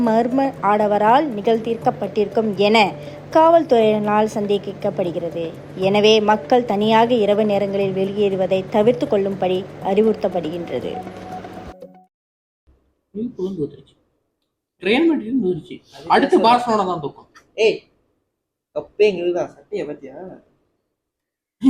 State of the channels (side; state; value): both; identical; correlation 1.00